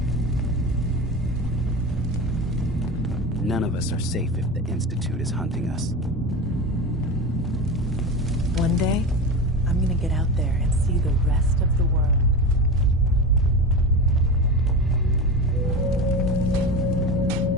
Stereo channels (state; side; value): normal; both; correlation 0.25